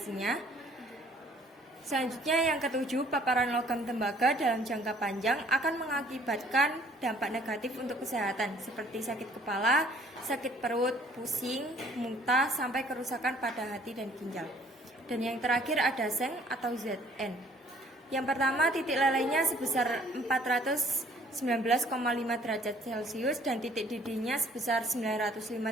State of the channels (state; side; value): normal; both; correlation 0.58